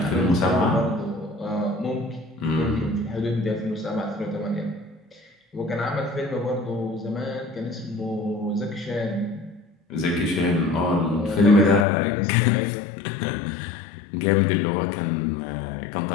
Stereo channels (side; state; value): right; drops out; at 11.9 s